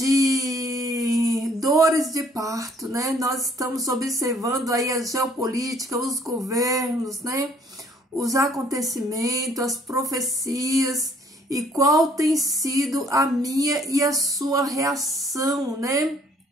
dores de parto, né? Nós estamos observando aí a geopolítica, os governos, né? Os acontecimentos, as profecias e qual tem sido a minha e a sua reação, né?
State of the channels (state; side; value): normal; both; correlation 0.61